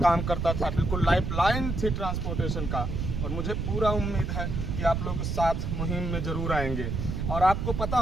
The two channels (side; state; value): right; noise; rumble, 2 dB below the sound